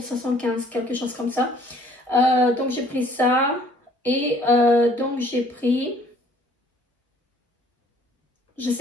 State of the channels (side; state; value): both; normal; correlation 0.58